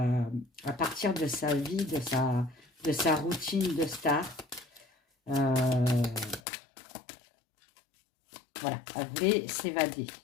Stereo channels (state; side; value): drops out; right; at 6.4 s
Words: partir de sa vie, de sa routine de star. Voilà, elle voulait s'évader